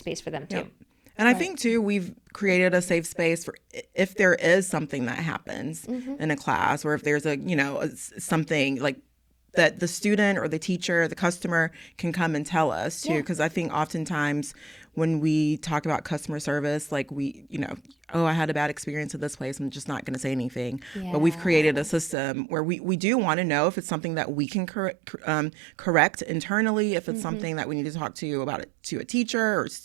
for them too. Yep. And I think, too, we've created a safe space for if there is something that happens in a class, or if there's something like that the student or the teacher, the customer can come and tell us, too. Because I think oftentimes when we talk about customer service, like, I had a bad experience at this place, I'm just not going to say anything. Yeah. But we've created a system where we do want to know if it's something that we can correct internally, if it's something that we need to talk to about it to a teacher or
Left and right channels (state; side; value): drops out; left; at 22.2 s